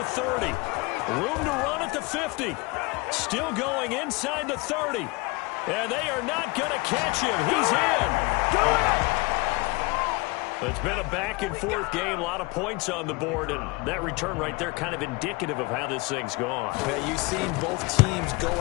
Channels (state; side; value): quieter; right; 25.0 dB